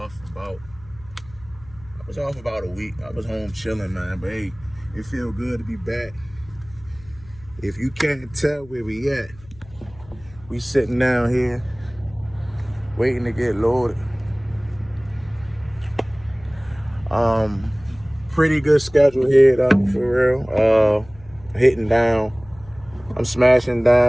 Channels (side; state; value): left; noise; hum, 22 dB below the sound